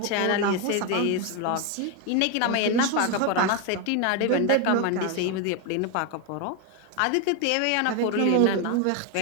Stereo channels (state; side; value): different; both; correlation 0.01